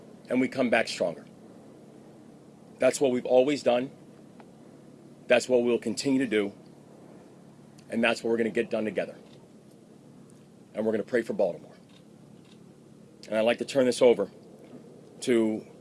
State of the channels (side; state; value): both; identical; correlation 1.00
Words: and we come back stronger. That's what we've always done. That's what we'll continue to do. And that's what we're going to get done together. And we're going to pray for Baltimore. And I'd like to turn this over to